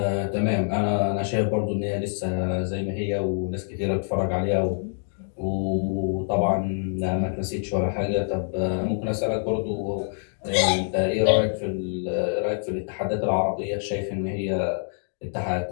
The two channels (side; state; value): right; silent; digital silence